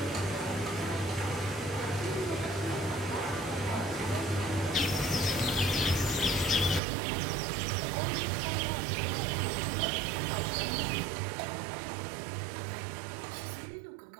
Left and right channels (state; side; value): drops out; left; at 6.8 s